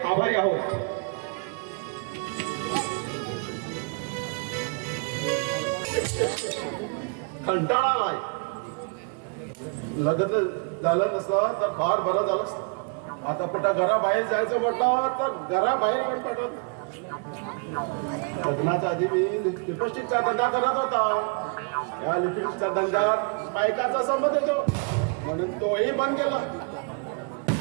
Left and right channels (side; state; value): left; quieter; 38.5 dB